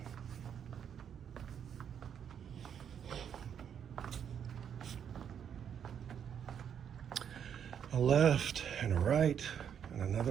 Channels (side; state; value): left; quieter; 8.3 dB